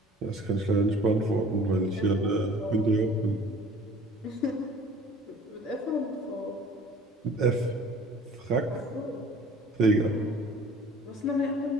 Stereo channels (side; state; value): both; normal; correlation 0.50